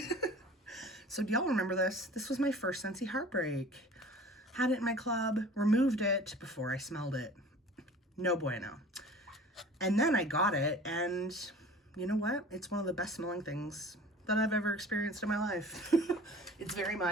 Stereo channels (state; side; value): normal; both; correlation 0.44